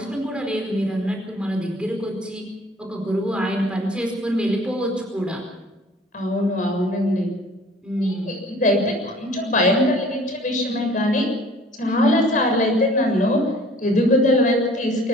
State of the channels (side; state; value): both; normal; correlation 0.51